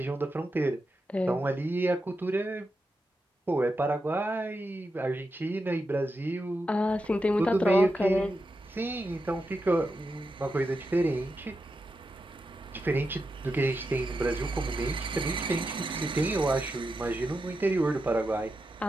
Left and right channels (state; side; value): normal; both; correlation 0.88